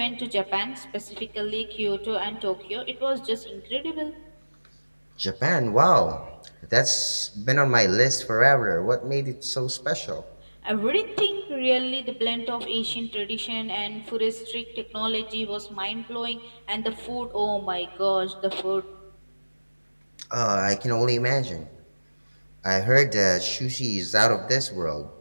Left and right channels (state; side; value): inverted; both; correlation -1.00